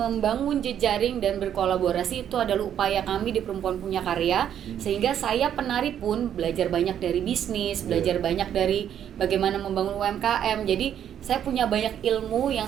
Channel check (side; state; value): left; quieter; 9.7 dB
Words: jejaring dan berkolaborasi itu adalah upaya kami di Perempuan Punya Karya. Sehingga saya penari pun belajar banyak dari bisnis, belajar banyak dari bagaimana membangun UMKM. Jadi saya punya banyak ilmu